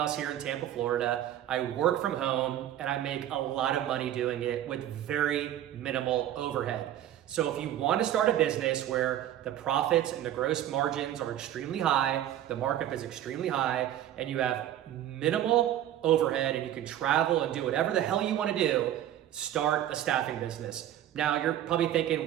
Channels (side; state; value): left; quieter; 11.7 dB